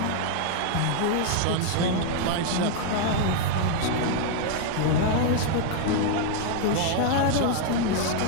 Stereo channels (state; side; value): different; both; correlation 0.00